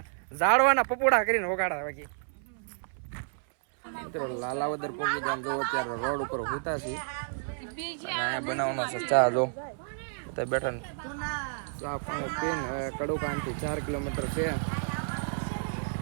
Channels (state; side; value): silent; left; 57 dB below the other